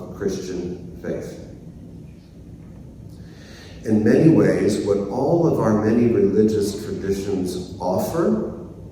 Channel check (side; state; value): both; identical; correlation 1.00